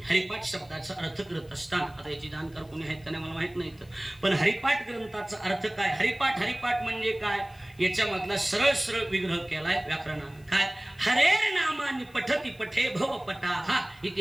हरिपाठ शब्दाचा अर्थ करत असताना, आता याची जाणकार कोणी आहेत का नाही मला माहित नाही, पण हरिपाठ ग्रंथाचा अर्थ काय? हरिपाठ म्हणजे काय? याच्यामधला सरळ विग्रह केलाय व्याकरणानं. काय? हरेर नामानी पठती पठे भव पटा हा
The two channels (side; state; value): left; noise; hiss, 28 dB below the sound